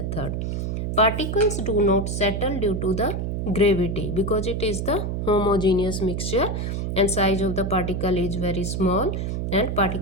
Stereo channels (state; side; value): noise; right; hum, 2 dB below the sound